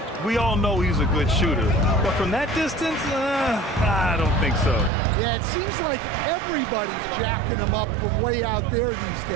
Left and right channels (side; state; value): left; drops out; at 4.9 s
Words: We all know he's a good shooter, but from that distance, I don't think so. Yeah, it seems like everybody's jacking him up from way out there these